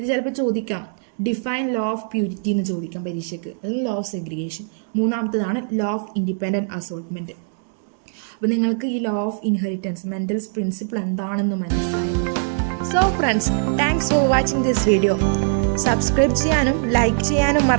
ചിലപ്പോൾ ചോദിക്കാം, ഡിഫൈൻ ലോ ഓഫ് പ്യൂരിറ്റി എന്ന് ചോദിക്കാം പരീക്ഷയ്ക്ക്. അത് ലോ ഓഫ് സെഗ്രിഗേഷൻ. മൂന്നാമത്തേതാണ് ലോ ഓഫ് ഇൻഡിപെൻഡന്റ് അസോർട്ട്മെന്റ്. അപ്പോൾ നിങ്ങൾക്ക് ഈ law of inheritance Mendel's principle എന്താണെന്ന് മനസ്സിലായി. So friends, thanks for watching this video. Subscribe ചെയ്യാനും ലൈക്ക് ചെയ്യാനും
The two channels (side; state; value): left; silent; 64 dB below the other